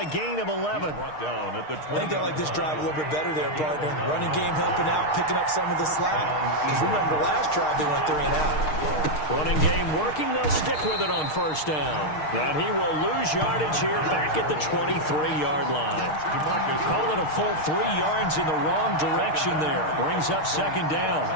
gain of 11. I think I like this drive a little bit better there, partner. Running game helping out, picking up some of the slack. Because remember, the last drive they went 3 and out. Running game working, they'll stick with it on 1st down. And he will lose yardage here back at the 23-yard line. Call it a full 3 yards in the wrong direction there. Brings up 2nd down.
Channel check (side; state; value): right; late; 6.5 ms